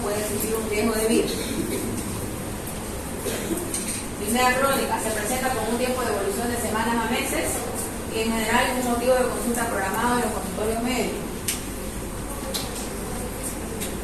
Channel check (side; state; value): both; identical; correlation 1.00